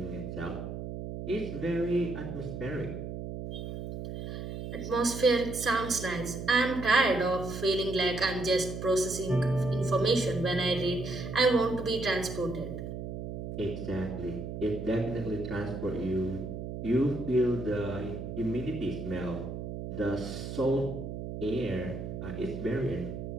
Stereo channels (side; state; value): right; noise; hum, 7 dB below the sound